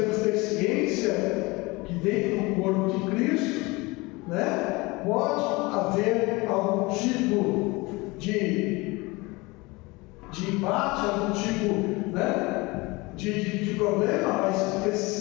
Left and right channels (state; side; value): quieter; right; 23.9 dB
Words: que ter ciência que dentro do corpo de Cristo, né, pode haver algum tipo de embate, algum tipo, né, de problema, mas